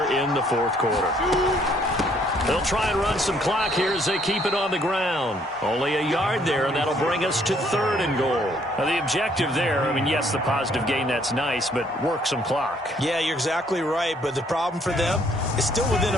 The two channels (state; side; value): normal; both; correlation 0.65